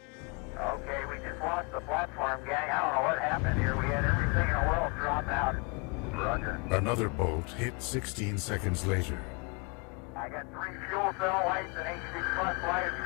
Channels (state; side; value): quieter; right; 31.0 dB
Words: Okay, we just lost the platform, gang. I don't know what happened here. We had everything in the world drop out. Roger. Another bolt hit 16 seconds later. I got 3 fuel cell lights and AC bus light,